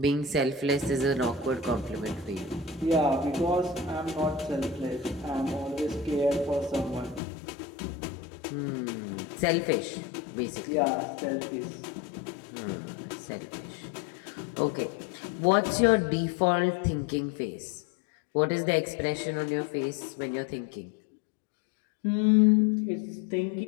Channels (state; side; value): drops out; right; at 7.2 s